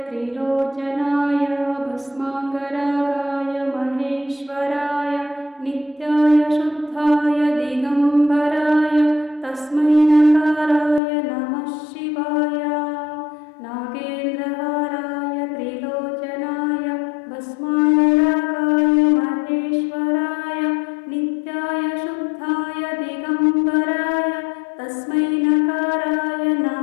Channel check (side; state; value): right; drops out; at 11.0 s